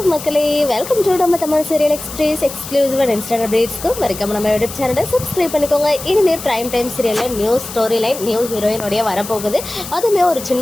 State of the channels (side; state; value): left; noise; hiss, 11 dB below the sound